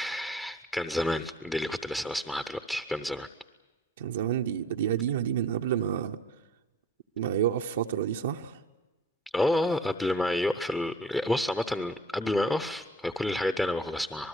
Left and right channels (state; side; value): normal; both; correlation 0.49